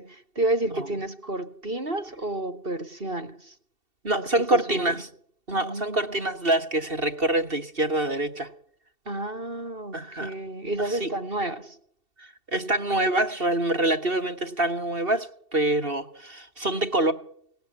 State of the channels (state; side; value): late; left; 2.7 ms